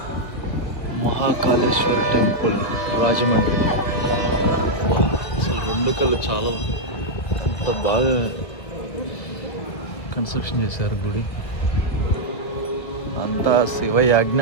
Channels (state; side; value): late; right; 1.5 ms